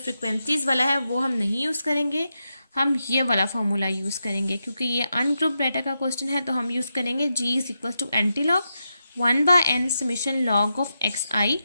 वाला है वो हम नहीं यूज़ करेंगे, हम ये वाला फार्मूला यूज़ करेंगे। क्योंकि ये अनग्रुप डाटा का क्वेश्चन है तो हम यूज़ करेंगे G is equal to anti log 1/n summation log of xi।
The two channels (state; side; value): inverted; both; correlation -0.87